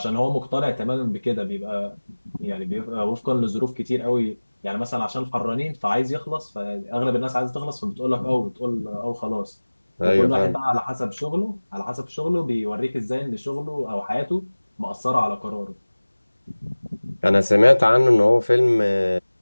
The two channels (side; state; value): both; inverted; correlation -1.00